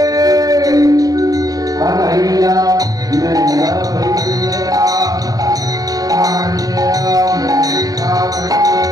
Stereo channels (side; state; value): left; late; 0.18 ms